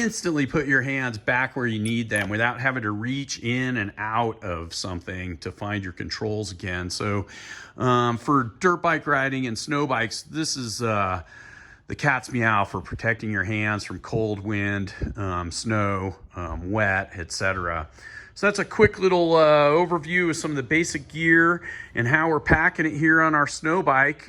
put your hands back where you need them without having to reach in and out of something to find your controls again. So for dirt bike riding and snow bikes, this is the cat's meow for protecting your hands from cold wind, snow, wet, etc. So that's a quick little overview of some of the basic gear and how we're packing it here on our snow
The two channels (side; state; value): both; identical; correlation 1.00